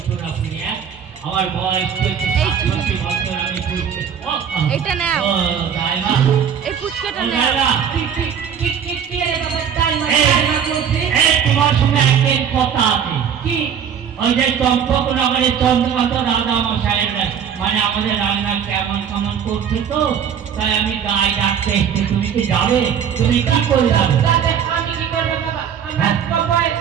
আপনি আমার বয়স 67 বছর আমি পুচকে এটা নাও ও দাইমা এই পুচকাটা নাও কে রে বাবা দাইমা বলছে এই তোমার সঙ্গে একটা কথা আছে কি ওই যে চম্পকনগরের চন্দ্রকান্ত রাজা মশাইয়ের মানে আমাদের রান্না কেমন কেমন করছে তো তাই আমি গায়ে ডাকতে এসেছি তুমি কি যাবে তুমি কি করে যাবে আমি কি করবো বাবা আমার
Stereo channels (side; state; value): left; quieter; 8.0 dB